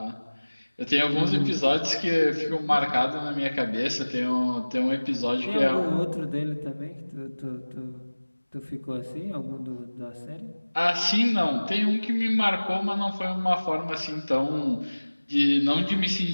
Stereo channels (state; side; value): inverted; both; correlation -1.00